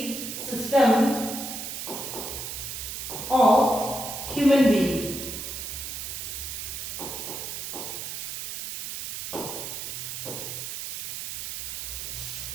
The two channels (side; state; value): right; noise; hiss, 6 dB below the sound